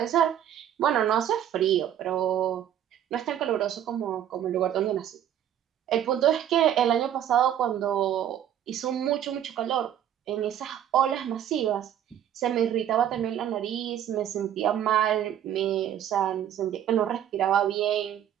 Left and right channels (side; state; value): left; quieter; 10.4 dB